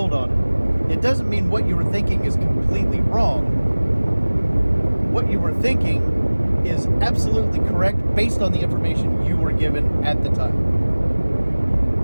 on it. It doesn't mean what you were thinking is completely wrong. What you were thinking is absolutely correct based on the information you were given at the time.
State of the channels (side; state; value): both; inverted; correlation -1.00